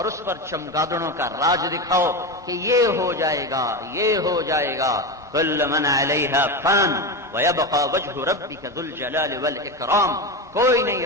اس پر چمگادڑوں کا راج دکھاؤ کہ یہ ہو جائے گا، یہ ہو جائے گا۔ کل من علیہا فان ویبقى وجہ ربک ذو الجلال والاکرام، کوئی نہیں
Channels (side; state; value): both; normal; correlation 0.18